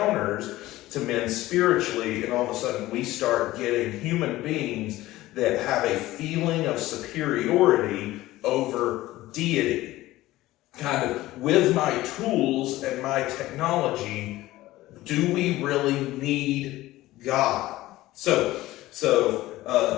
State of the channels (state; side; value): quieter; right; 16.8 dB